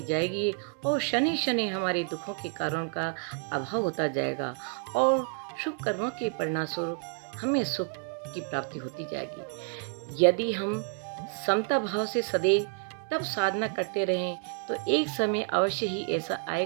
जाएगी और शनि शनि हमारे दुखों के कारण का अभाव होता जाएगा और शुभ कर्मों के परिणामस्वरूप हमें सुख की प्राप्ति होती जाएगी। यदि हम समता भाव से सदैव तब साधना करते रहें तो एक समय अवश्य ही ऐसा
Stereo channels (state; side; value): quieter; left; 39.5 dB